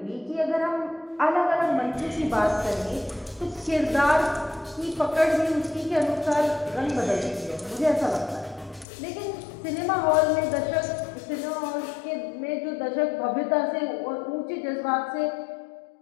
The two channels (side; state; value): right; drops out; at 8.8 s